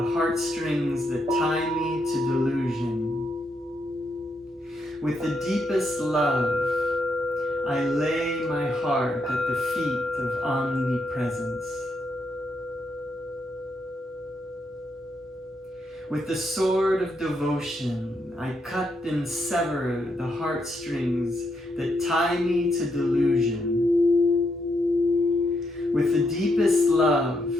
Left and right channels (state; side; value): normal; both; correlation 0.79